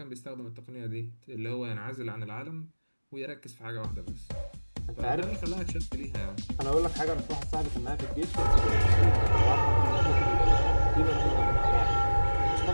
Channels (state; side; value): inverted; both; correlation -1.00